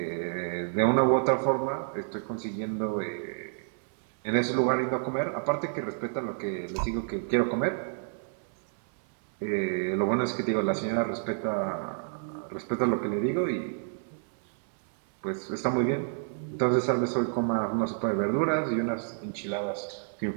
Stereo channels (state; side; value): silent; left; 58 dB below the other